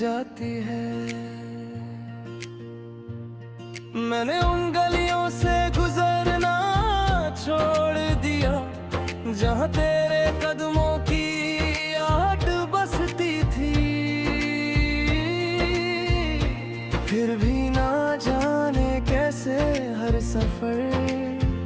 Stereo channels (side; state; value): both; identical; correlation 1.00